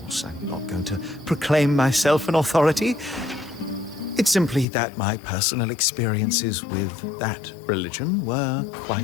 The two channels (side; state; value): right; drops out; at 4.7 s